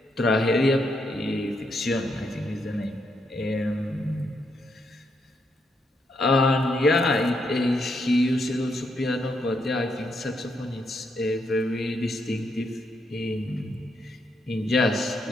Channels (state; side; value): normal; both; correlation 0.78